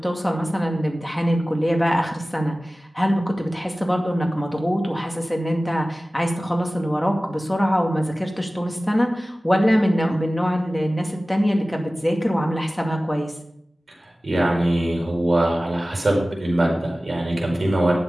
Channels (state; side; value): normal; both; correlation 0.97